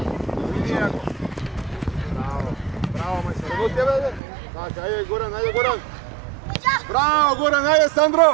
Bravo, majstor. Evo tebe, ajde. Znači, ajde, Goran. Bravo, Goran, ajde,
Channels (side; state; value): left; drops out; at 4.2 s